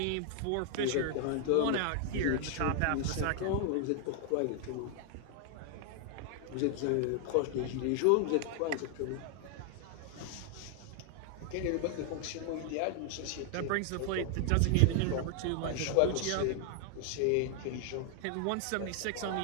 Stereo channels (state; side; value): different; both; correlation 0.00